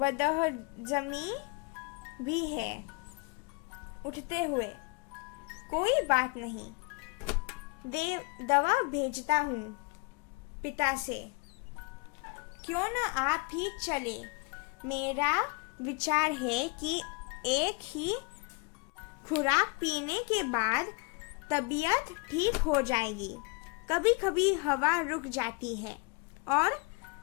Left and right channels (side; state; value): right; quieter; 29.2 dB